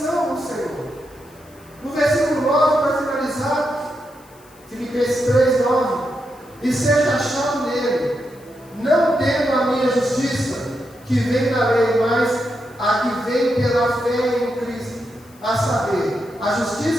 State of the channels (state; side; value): noise; left; hiss, 28 dB below the sound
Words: do Senhor. No versículo 9, para finalizar, Filipenses 3, 9: e seja achado nele, não tendo a minha justiça, que vem da lei, mas a que vem pela fé em Cristo, a saber, a